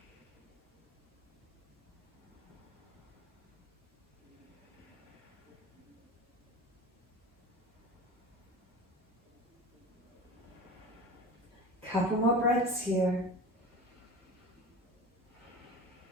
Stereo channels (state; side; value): normal; both; correlation 0.33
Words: Couple more breaths here.